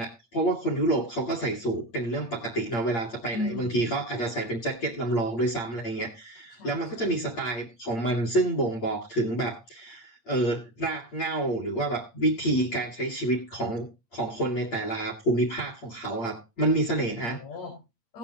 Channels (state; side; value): late; right; 8.7 ms